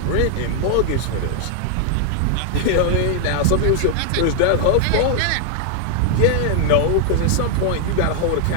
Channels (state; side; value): different; both; correlation 0.00